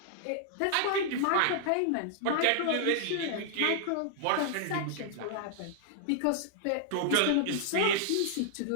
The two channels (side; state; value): both; different; correlation -0.01